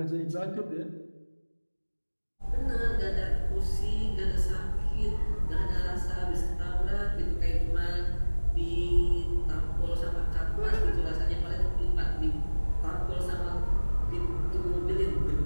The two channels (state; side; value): inverted; both; correlation -1.00